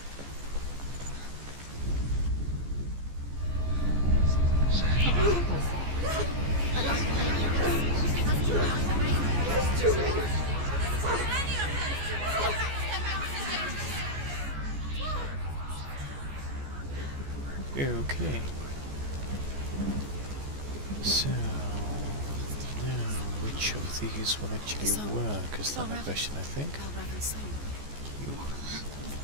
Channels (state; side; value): late; left; 14 ms